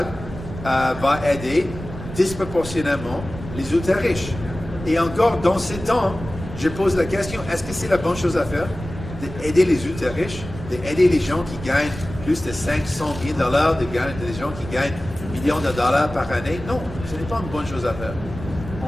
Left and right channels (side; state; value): right; noise; rumble, 11 dB below the sound